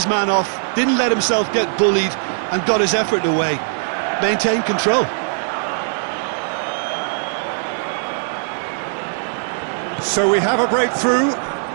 man off, didn't let himself get bullied, and got his effort away. Maintained control. So we have a breakthrough.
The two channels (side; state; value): left; silent; digital silence